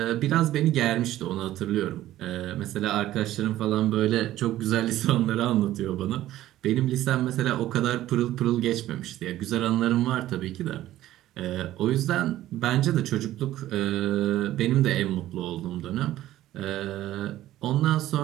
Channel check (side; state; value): left; quieter; 14.2 dB